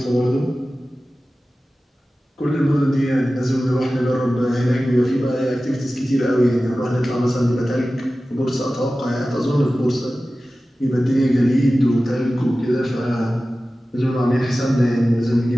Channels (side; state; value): both; normal; correlation 0.95